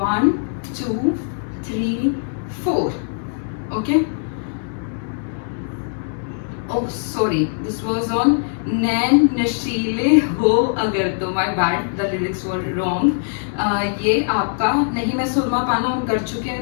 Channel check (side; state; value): right; silent; digital silence